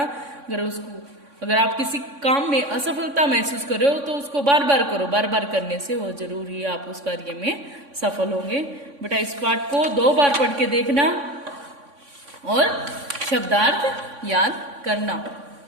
अगर आप किसी काम में असफलता महसूस कर रहे हो तो उसको बार बार करो। बार बार करने से वो जरूर ही आप उस कार्य में सफल होंगे। बेटा इस पाठ को 2 बार पढ़ के देखना और शब्दार्थ याद करना।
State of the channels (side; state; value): left; late; 3.6 ms